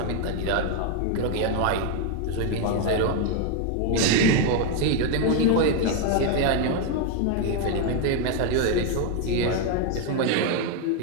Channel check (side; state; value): both; different; correlation 0.01